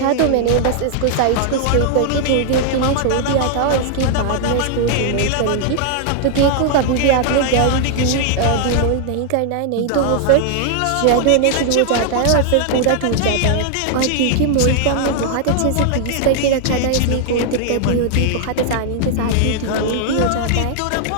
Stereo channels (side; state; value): both; different; correlation 0.00